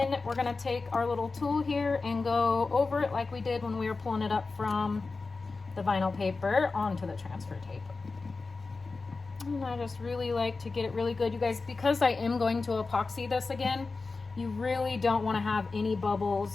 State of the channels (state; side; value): quieter; right; 4.0 dB